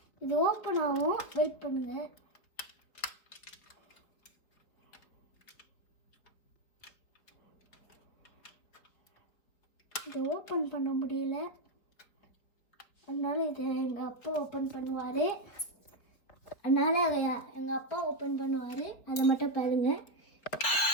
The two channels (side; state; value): right; late; 4.1 ms